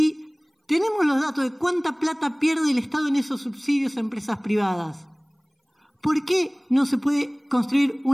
tenemos los datos de cuánta plata pierde el Estado en esos subsidios a empresas privadas, ¿por qué no se puede construir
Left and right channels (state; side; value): identical; both; correlation 1.00